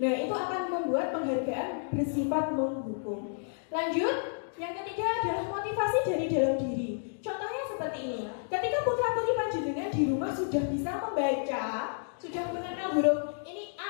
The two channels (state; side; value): silent; right; digital silence